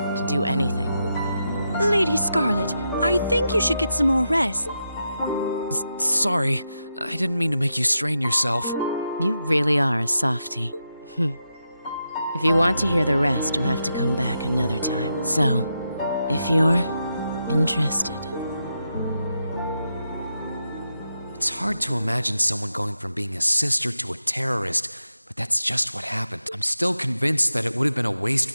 do anything. Lady Scarlet, I think you should get some more rest. Sorry, I didn't mean to make you strain yourself. You really are a softie. If you want to hear the rest, you'll have to come back another time. So, if you're interested. It's hard to imagine someone going from being a sister to a terrorist, but that's just what happened. I'm still convinced that it would have been a waste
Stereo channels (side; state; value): both; inverted; correlation -0.85